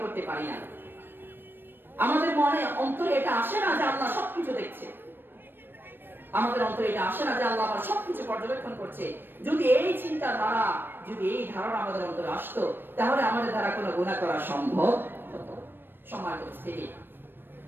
করতে পারি না। আমাদের মনে অন্তরে এটা আসে না যে আল্লাহ সবকিছু দেখছে, আমাদের অন্তরে এটা আসে না যে আল্লাহ আমার সবকিছু পর্যবেক্ষণ করছে। যদি এই চিন্তা ধারা, যদি এই ধারণা আমাদের অন্তরে আসতো, তাহলে আমাদের দ্বারা কোনো গুনাহ করা সম্ভব হতো। সম্মানিত উপস্থিতি,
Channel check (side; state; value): left; late; 0.097 ms